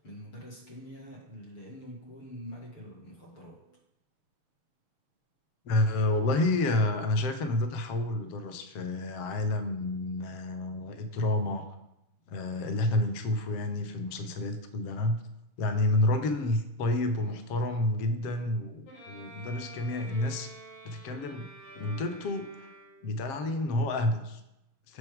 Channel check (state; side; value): late; right; 7.5 ms